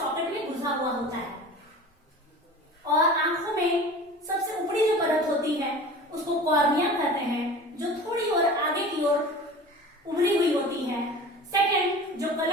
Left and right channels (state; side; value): normal; both; correlation 0.38